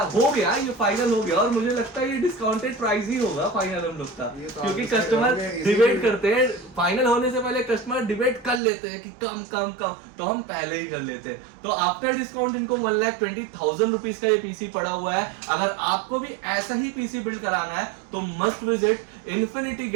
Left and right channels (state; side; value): drops out; left; at 8.6 s